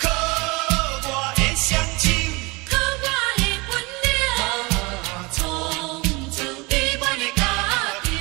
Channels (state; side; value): quieter; left; 25.7 dB